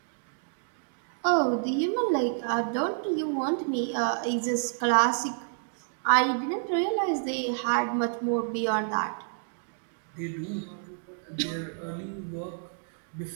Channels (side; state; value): left; silent; digital silence